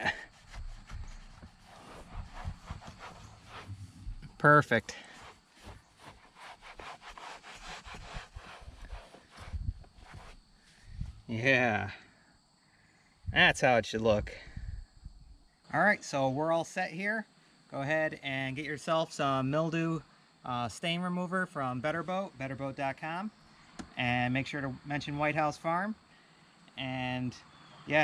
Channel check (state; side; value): identical; both; correlation 1.00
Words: Perfect. Yeah. That's how it should look. All right, so we're all set here. Go ahead and get yourself some mildew stain remover from betterboat.com, and make sure to mention Whitehouse Farm. And